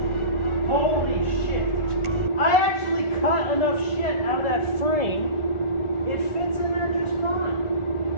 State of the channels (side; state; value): right; late; 1.4 ms